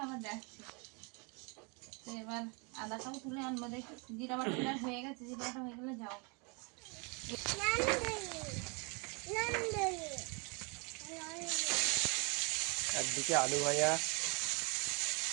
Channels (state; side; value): quieter; left; 32.2 dB